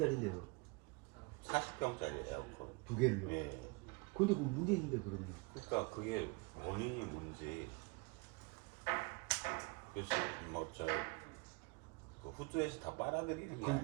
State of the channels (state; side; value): quieter; left; 27.8 dB